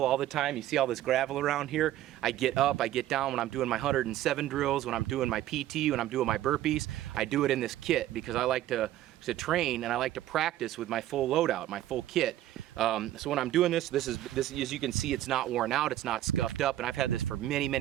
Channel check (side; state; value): left; quieter; 13.5 dB